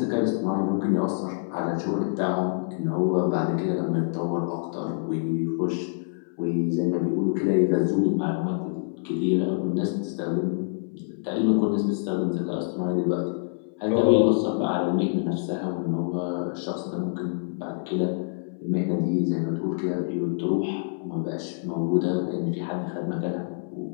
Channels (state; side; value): silent; right; 61 dB below the other